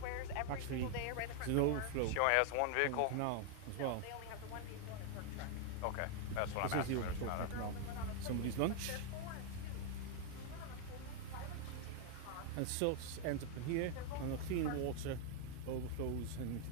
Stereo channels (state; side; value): different; both; correlation 0.00